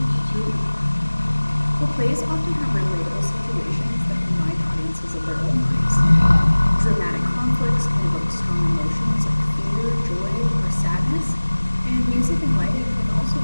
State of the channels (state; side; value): inverted; both; correlation -1.00